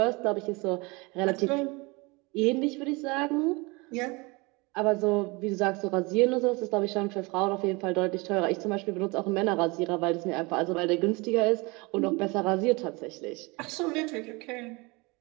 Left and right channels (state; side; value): quieter; left; 26.3 dB